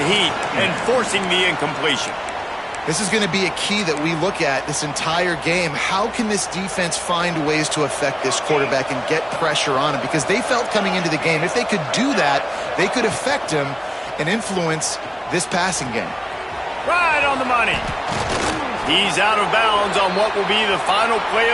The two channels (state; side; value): identical; both; correlation 1.00